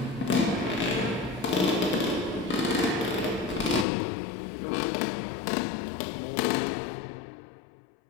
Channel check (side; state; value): right; drops out; at 3.9 s